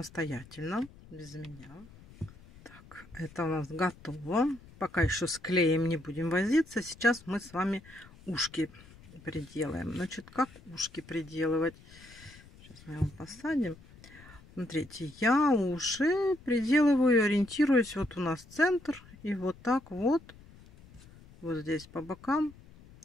без меня. Так, это у нас готово. Пока еще с клеем не будем возиться. Сейчас мы с вами ушки приделаем. Значит, как ушки приделывать? Сейчас мы его посадим. Смотрите, я уши приделываю, ориентируюсь. Вот у нас центр. И вот так вот. Вот здесь по бокам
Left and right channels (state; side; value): noise; left; rumble, 22 dB below the sound